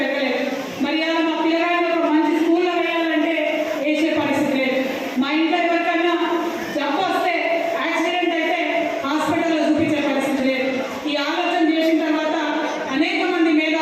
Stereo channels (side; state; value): both; identical; correlation 1.00